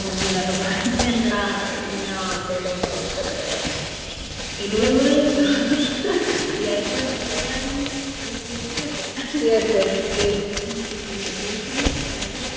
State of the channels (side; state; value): both; identical; correlation 1.00